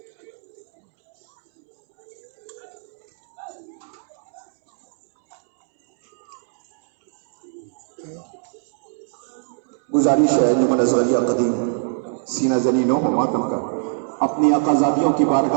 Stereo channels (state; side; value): silent; left; 64 dB below the other